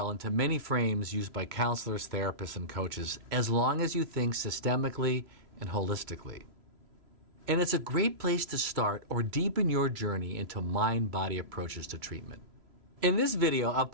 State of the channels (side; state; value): left; late; 3.0 ms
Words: into many frames used by counselors, therapists, and coaches, as long as you think systemically and holistically. And it's a great place to start or deepen your journey into mind-body approaches to treatment. In this video, I've